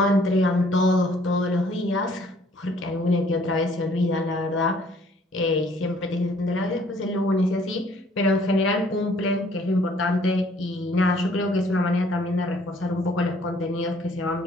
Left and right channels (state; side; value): normal; both; correlation 0.60